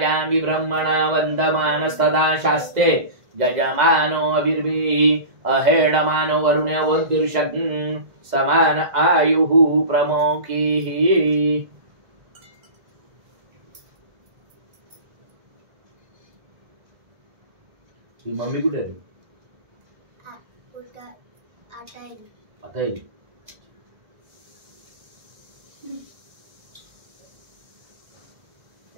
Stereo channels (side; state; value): left; late; 2.0 ms